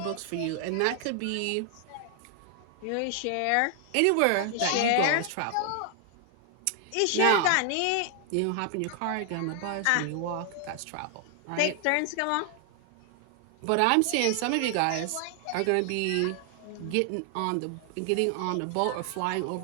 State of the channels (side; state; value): both; different; correlation 0.00